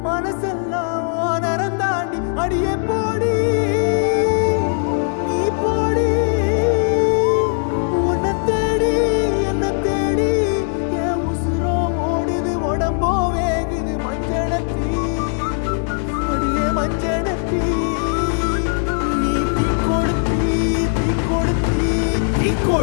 மனசெல்லாம் நரந்தாண்டி அடியே போடி நீ போடி உன்னை தேடி என்ன தேடி என் உசுரோ ஓடுது உடம்போ வேகுது மஞ்சனத்தி அடியே மஞ்சனத்தி நீ தீ கொடுத்தி தீ கொடுத்தி தீ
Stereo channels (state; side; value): silent; right; 57 dB below the other